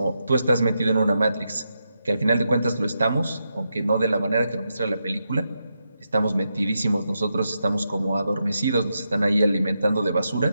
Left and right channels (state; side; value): inverted; both; correlation -0.85